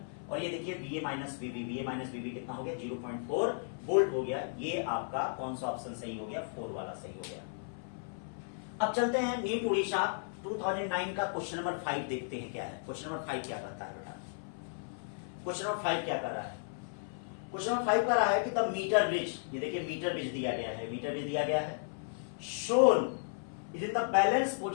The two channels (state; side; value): silent; right; 55 dB below the other